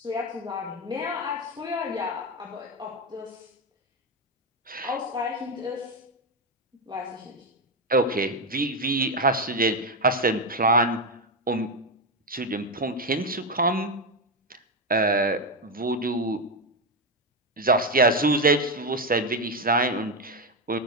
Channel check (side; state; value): both; normal; correlation 0.09